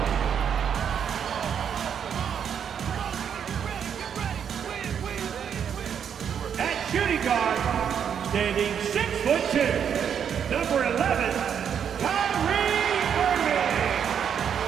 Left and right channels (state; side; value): quieter; left; 8.0 dB